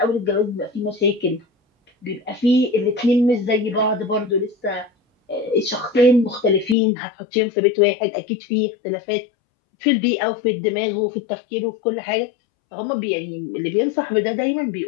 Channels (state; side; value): drops out; right; at 6.8 s